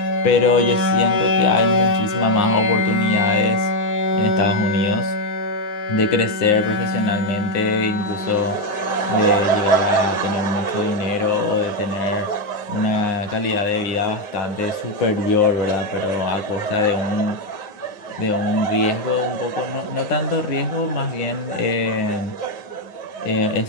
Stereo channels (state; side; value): late; right; 9.7 ms